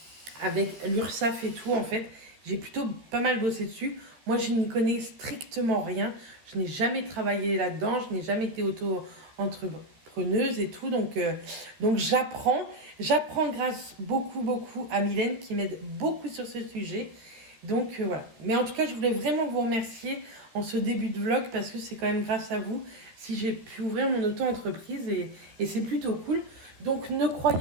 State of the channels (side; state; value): left; late; 13 ms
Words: avec l'URSSAF et tout, en fait. J'ai plutôt pas mal bossé dessus. Moi, je n'y connais strictement rien. Je n'ai jamais travaillé là-dedans. Je n'ai jamais été auto-entrepreneuse et tout. Donc j'apprends. J'apprends grâce beaucoup à Mylène qui m'aide beaucoup sur ce sujet. Donc voilà. Mais en tout cas, je voulais vraiment vous remercier en ce début de vlog parce que c'est quand même grâce à vous si j'ai pu ouvrir mon auto-entreprise et c'est plutôt cool. Donc ne